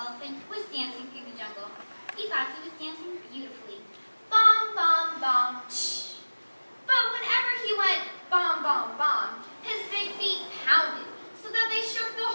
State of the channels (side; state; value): both; inverted; correlation -1.00